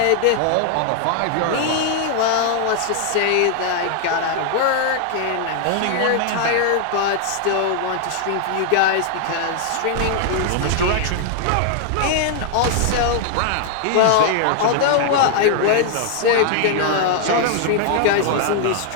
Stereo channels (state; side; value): different; both; correlation 0.00